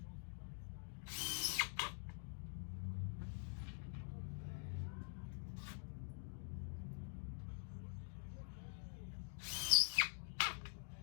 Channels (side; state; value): right; silent; digital silence